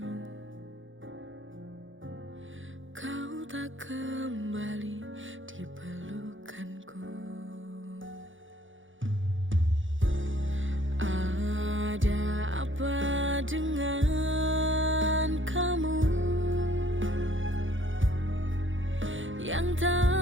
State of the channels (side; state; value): left; late; 0.57 ms